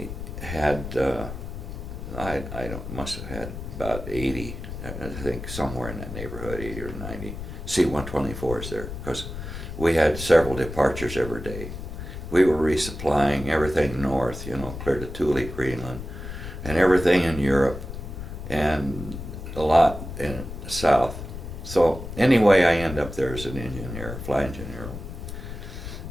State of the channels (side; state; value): left; noise; rumble, 9 dB below the sound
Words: must have had about 80, I think somewhere in that neighborhood, 80 or 90 C-124s there, because we had several departures every day. We were resupplying everything north, you know, clear to Thule, Greenland, and everything in Europe, and a lot in the south. So anyway, I end up there as an engineer, flight engineer,